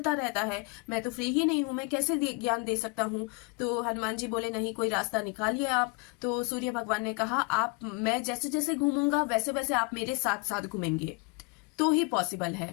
रहता है, मैं तो फ्री ही नहीं हूँ, मैं कैसे ज्ञान दे सकता हूँ। तो हनुमान जी बोले, नहीं, कोई रास्ता निकालिए आप। तो सूर्य भगवान ने कहा, मैं जैसे जैसे घूमूंगा वैसे वैसे आप मेरे साथ साथ घूमेंगे तो ही पॉसिबल है।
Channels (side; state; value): right; quieter; 30.1 dB